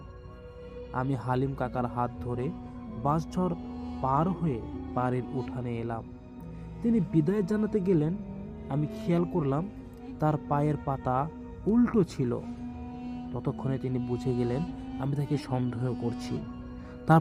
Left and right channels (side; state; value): both; identical; correlation 1.00